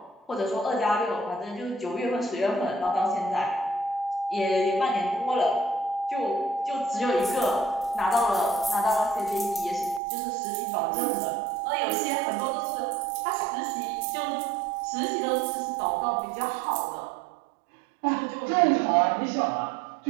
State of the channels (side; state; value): left; drops out; at 10.0 s